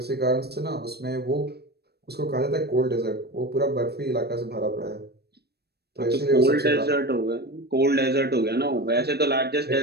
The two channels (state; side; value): late; left; 0.47 ms